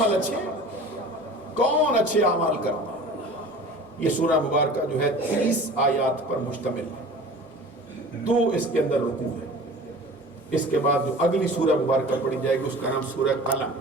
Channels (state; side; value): normal; both; correlation 0.41